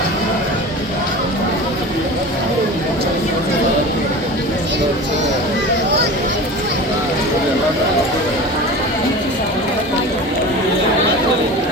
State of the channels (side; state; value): both; normal; correlation 0.34